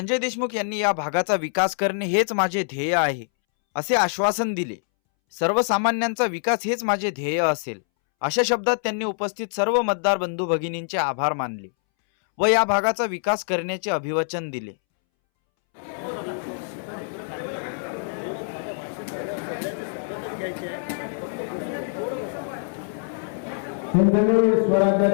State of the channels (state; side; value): silent; right; 62 dB below the other